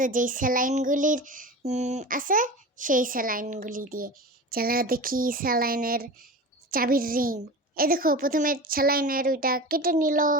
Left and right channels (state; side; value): normal; both; correlation 0.31